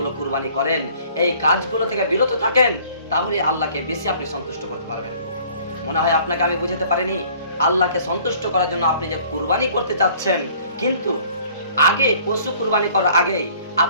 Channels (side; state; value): both; inverted; correlation -0.55